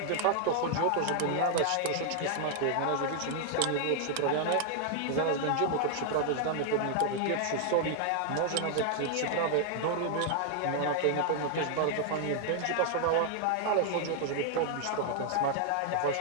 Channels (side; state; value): both; different; correlation 0.00